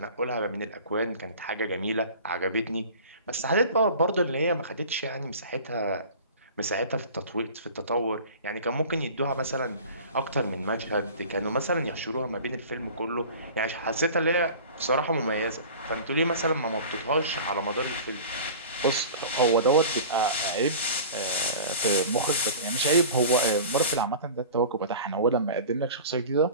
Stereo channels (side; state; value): both; inverted; correlation -0.39